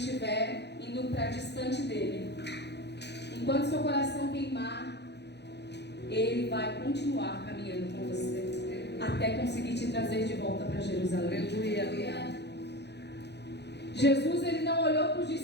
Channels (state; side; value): late; right; 0.49 ms